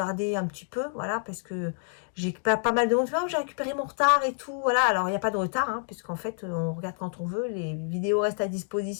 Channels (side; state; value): right; silent; 59 dB below the other